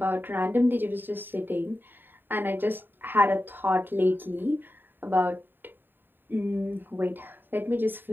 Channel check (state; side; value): late; left; 0.094 ms